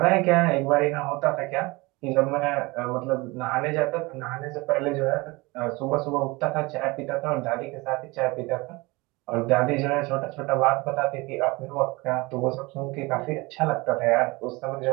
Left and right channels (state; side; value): quieter; left; 23.8 dB